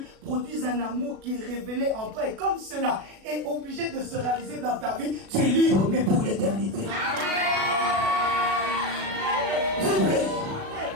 produisent un amour qui est révélé en toi. Et comme cela est obligé de se réaliser dans ta vie, tu es libre, mais pour l'éternité. Vibrez.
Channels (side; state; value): left; late; 36 ms